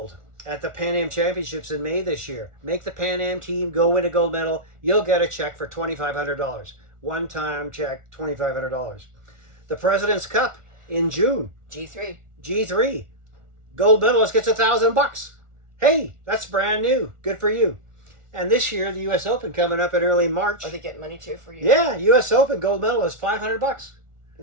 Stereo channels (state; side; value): late; left; 1.4 ms